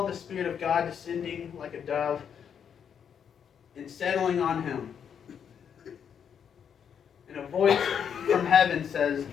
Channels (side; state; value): right; quieter; 7.8 dB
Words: the Spirit of God descending like a dove and settling on him. And a voice from heaven says,